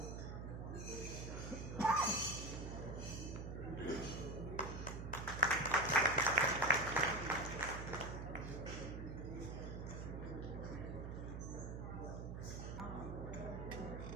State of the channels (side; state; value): right; noise; hum, 6 dB below the sound